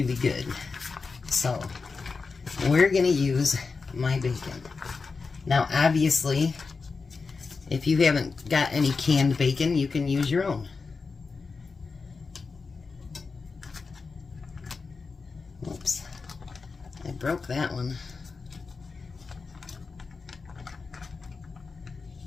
good. So we're going to use my bacon. Now obviously, if you haven't got any canned bacon, you can use your own. Oops, I broke that one.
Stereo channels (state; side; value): quieter; right; 4.5 dB